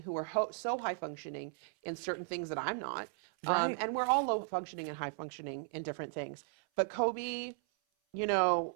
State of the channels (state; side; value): silent; left; 54 dB below the other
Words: who are so high functioning in certain things that I'm not. Right. And we're all low functioning and high functioning in different things. But Kobe,